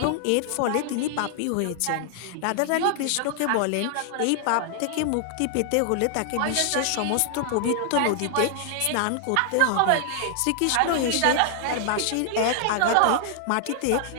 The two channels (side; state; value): both; different; correlation 0.00